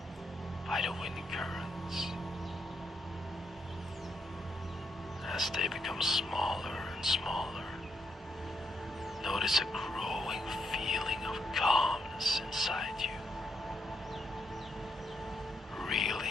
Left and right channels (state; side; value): normal; both; correlation 0.80